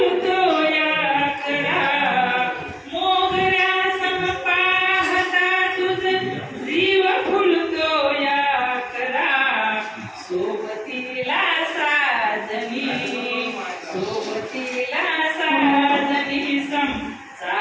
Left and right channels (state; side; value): identical; both; correlation 1.00